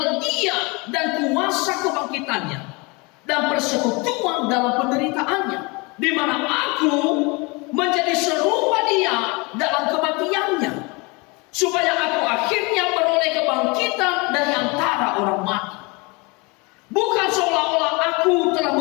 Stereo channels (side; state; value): right; quieter; 27.6 dB